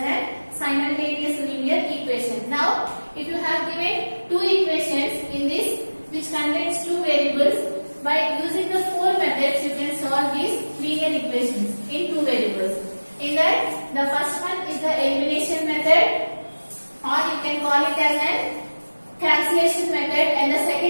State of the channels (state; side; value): inverted; both; correlation -1.00